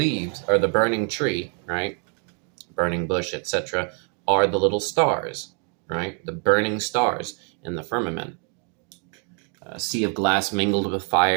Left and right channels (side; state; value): left; quieter; 39.8 dB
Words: or the burning tree, right? Burning bush, etc., are the little stars, right? The burning stars in the firmament. A sea of glass mingled with